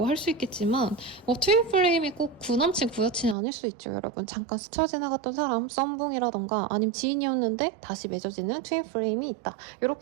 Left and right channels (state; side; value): drops out; left; at 3.4 s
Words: 할 수 있겠지만 트윈플레임이 꼭 구남친 구여친이 아닐 수 있죠. 여러분 잠깐 스쳐 지나갔던 사람 썸붕이라던가 아니면 지인이었는데 다시 맺어지는 트윈플레임이 있다.